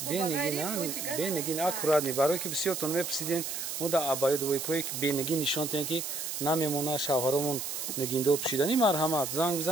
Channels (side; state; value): right; noise; hiss, 4 dB below the sound